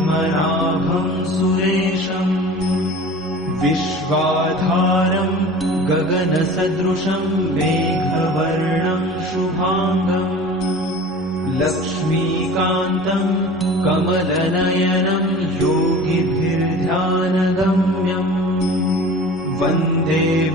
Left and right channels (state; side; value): normal; both; correlation 0.40